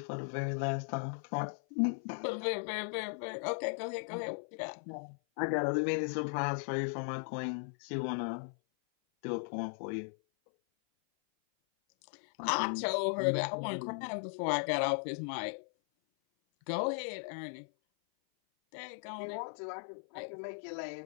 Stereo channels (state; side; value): silent; right; 53 dB below the other